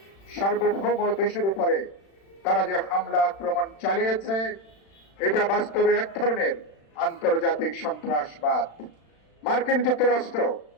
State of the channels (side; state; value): right; late; 36 ms